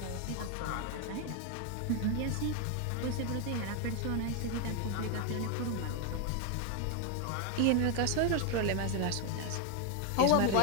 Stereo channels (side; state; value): both; different; correlation 0.01